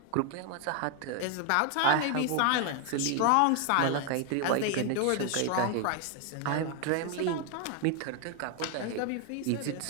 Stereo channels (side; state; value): both; different; correlation 0.01